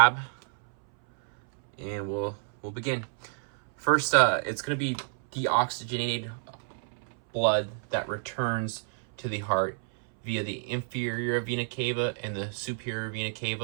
And we'll begin. First, it's going to be deoxygenated blood that returns to the heart via the inferior vena cava and the superior vena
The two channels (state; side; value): silent; left; 59 dB below the other